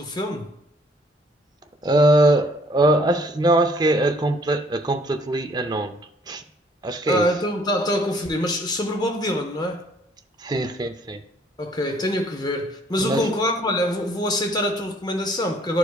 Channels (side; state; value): both; normal; correlation 0.61